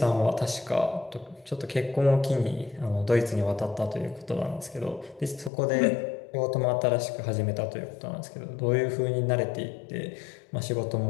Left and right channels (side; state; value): right; drops out; at 5.5 s